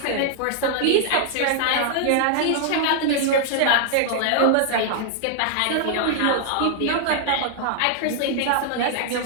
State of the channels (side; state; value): both; different; correlation 0.00